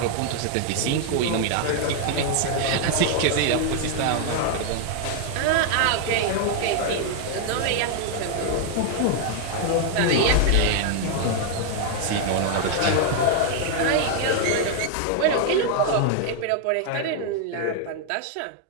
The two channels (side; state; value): both; different; correlation 0.00